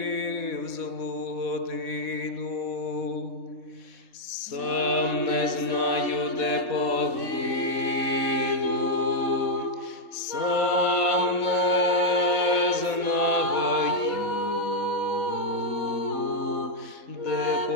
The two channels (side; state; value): right; late; 4.1 ms